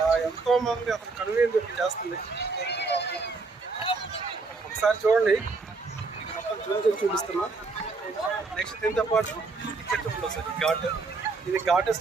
ఎంతోమంది అసలు కనువిందు చేస్తుంది. ఒకసారి చూడండి, మొత్తం జూమ్ చేసి చూపిస్తున్నా. నెక్స్ట్ దీంతో పాటు ఇక్కడ చూడండి సార్, ఘాట్. ఇది ఘాట్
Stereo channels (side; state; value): left; quieter; 4.1 dB